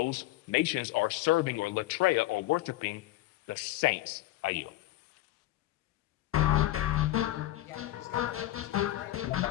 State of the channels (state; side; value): quieter; right; 15.9 dB